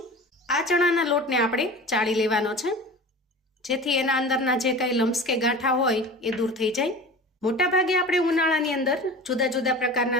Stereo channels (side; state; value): both; normal; correlation 0.36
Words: આ ચણાના લોટને આપણે ચાળી લેવાનો છે, જેથી એના અંદરના જે કંઈ લમ્સ કે ગાંઠા હોય એ દૂર થઈ જાય. મોટાભાગે આપણે ઉનાળાની અંદર જુદા જુદા